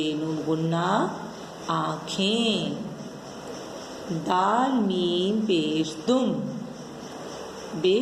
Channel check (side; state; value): both; identical; correlation 1.00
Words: नून गुन्ना आँखें। दाल मीम पेश दुम, बे